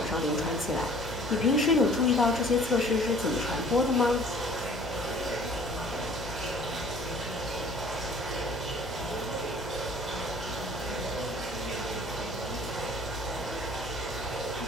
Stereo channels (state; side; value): normal; both; correlation 0.52